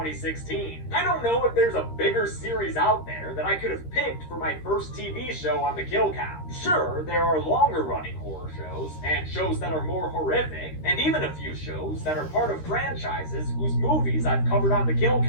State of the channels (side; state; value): right; late; 13 ms